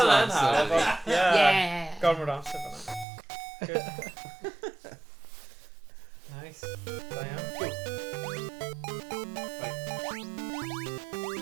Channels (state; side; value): drops out; left; at 3.1 s